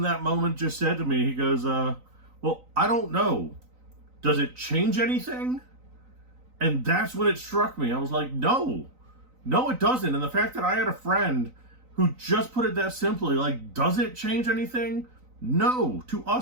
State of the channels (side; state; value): left; late; 3.9 ms